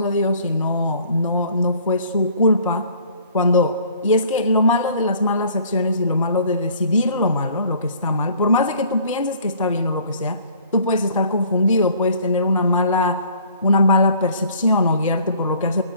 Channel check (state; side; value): inverted; both; correlation -0.55